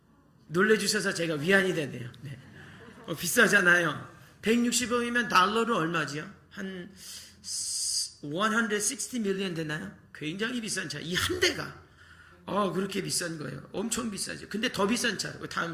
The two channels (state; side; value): identical; both; correlation 1.00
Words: 놀래주셔서 제가 위안이 되네요. 네. 비싸잖아요. 160억이면 달러로 얼마지요? 한 160 밀리언 되나요? 굉장히 비싼 차. 이 한 대가 그렇게 비싼 거예요. 엄청 비싸죠. 근데 더 비싼 차,